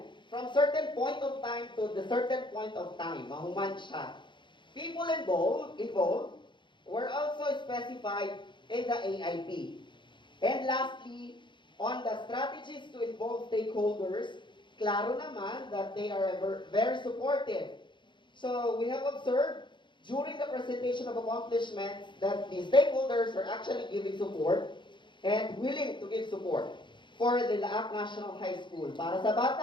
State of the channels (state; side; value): late; right; 0.23 ms